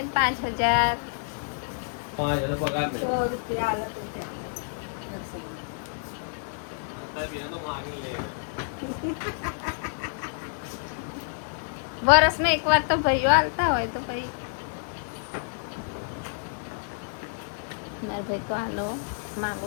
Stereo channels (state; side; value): silent; right; digital silence